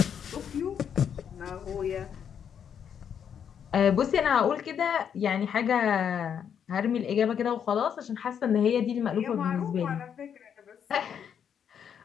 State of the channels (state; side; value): quieter; right; 8.1 dB